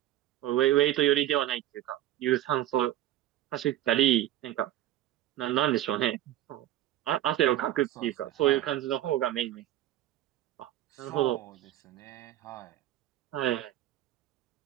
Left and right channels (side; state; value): left; quieter; 13.4 dB